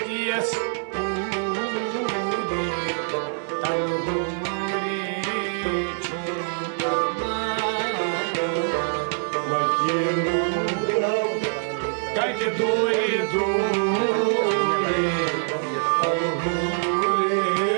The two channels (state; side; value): silent; left; digital silence